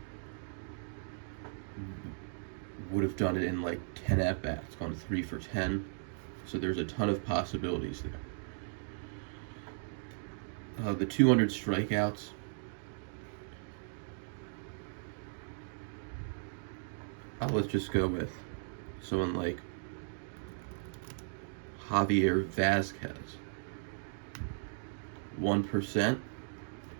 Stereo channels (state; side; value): silent; left; digital silence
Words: would have done it in like 10 at bats, gone 3 for 10. So there's a ton of possibilities there. The 200 strikeouts. Let's just go with someone like Javier Vazquez. 1%.